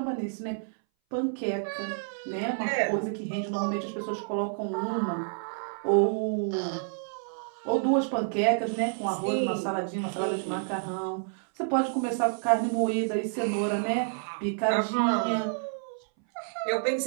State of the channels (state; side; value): silent; left; 59 dB below the other